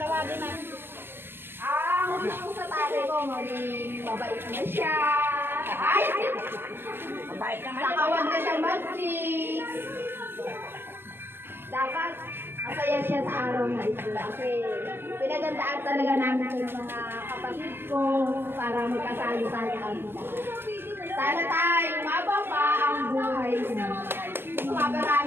Ang gusto ko sa tatay ko, maging mabait na siya. Ay! Mabait naman. Saka huwag na siyang mag-chicks. Dapat masaya siya sa araw na ito. Kasi pinagandaan talaga namin ng mga kapatid ko para magkasalo tayo kami. Sana tayo umaba pa ang buhay mo.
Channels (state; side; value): late; left; 0.10 ms